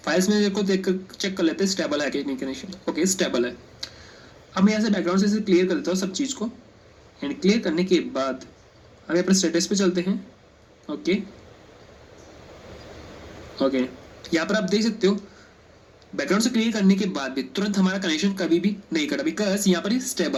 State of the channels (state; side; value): identical; both; correlation 1.00